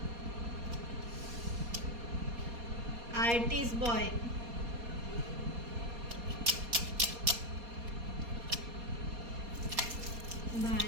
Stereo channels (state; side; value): late; left; 4.2 ms